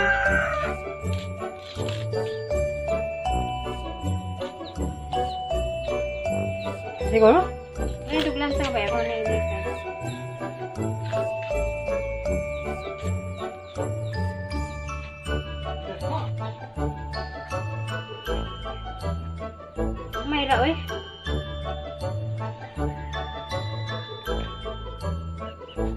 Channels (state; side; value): identical; both; correlation 1.00